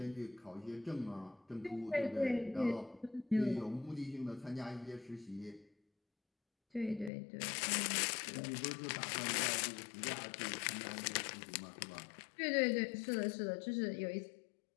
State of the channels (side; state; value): right; drops out; at 7.1 s